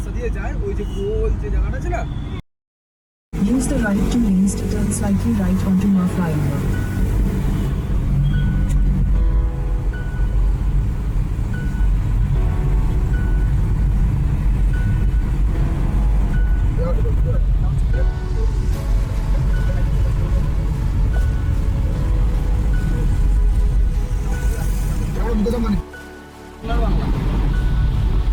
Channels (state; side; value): identical; both; correlation 1.00